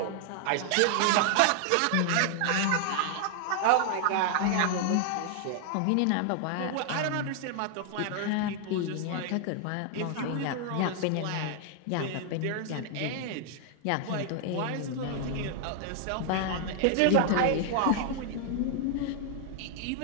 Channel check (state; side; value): different; both; correlation 0.00